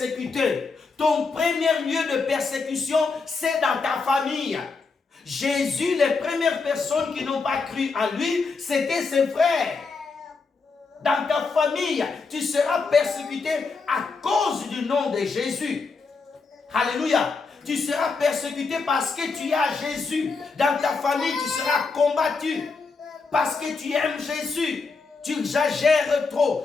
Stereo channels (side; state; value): right; quieter; 4.4 dB